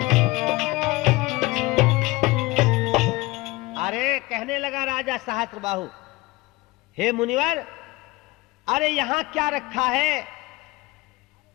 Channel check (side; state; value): right; quieter; 21.5 dB